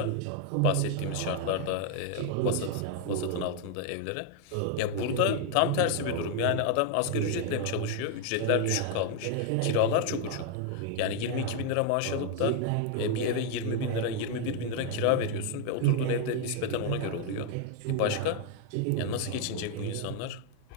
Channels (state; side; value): different; both; correlation 0.01